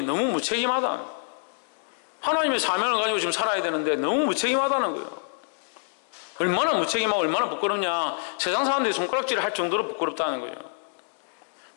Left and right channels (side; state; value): right; silent; digital silence